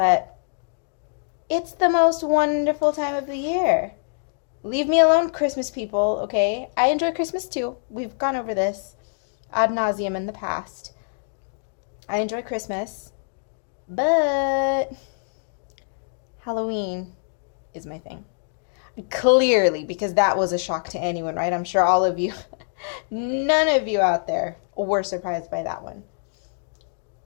it's the most wonderful time of the year. Leave me alone, Christmas people, okay? I enjoy Christmas too. We've gone over this ad nauseum in the past. I enjoy Christmas, but Halloween is my thing. Clearly, because that was a shock to anyone, right? I'm sure all of you, none of you out there were surprised by that one.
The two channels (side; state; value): right; silent; digital silence